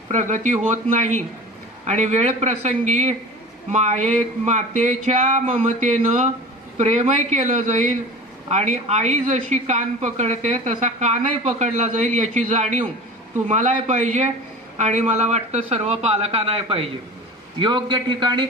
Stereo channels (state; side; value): normal; both; correlation 0.36